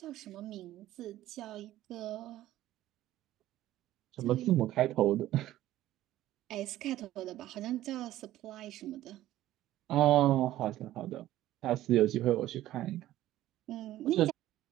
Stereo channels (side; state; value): left; quieter; 14.4 dB